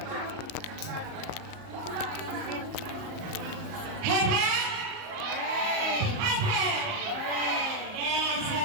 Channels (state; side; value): late; left; 38 ms